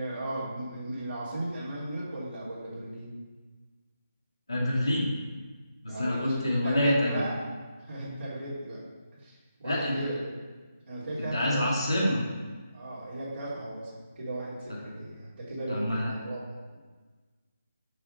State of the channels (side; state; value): both; inverted; correlation -0.84